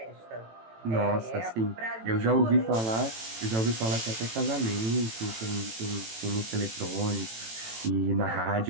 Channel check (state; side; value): late; left; 18 ms